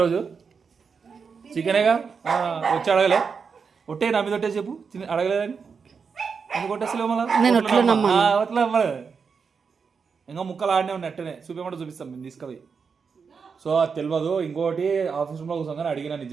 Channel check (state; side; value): quieter; left; 5.7 dB